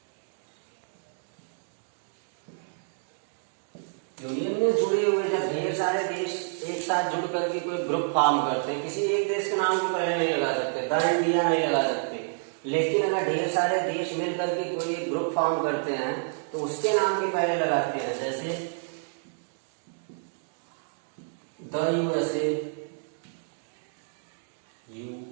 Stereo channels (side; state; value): left; silent; digital silence